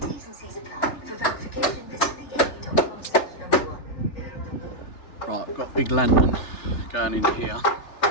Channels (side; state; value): right; late; 3.4 ms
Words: Right, I've got a big lantern going in here.